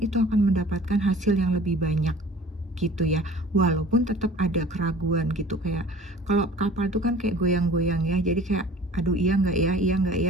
itu akan mendapatkan hasil yang lebih banyak gitu ya, walaupun tetap ada keraguan gitu. Kayak kalau kapal itu kan kayak goyang-goyang ya, jadi kayak aduh iya nggak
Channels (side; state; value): both; normal; correlation 0.46